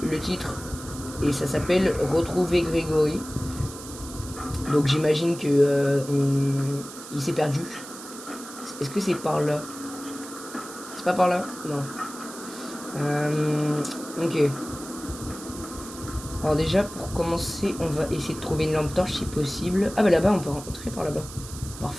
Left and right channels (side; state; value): right; noise; hiss, 14 dB below the sound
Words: le titre et ça s'appelle Retrouver Grégory. Donc j'imagine que il s'est perdu. Est-ce que c'est par là? C'est pas par là? Non. Ok. Alors déjà, pour commencer, on va essayer de trouver une lampe torche si possible. Ah bah là-bas, on peut rentrer par là-bas.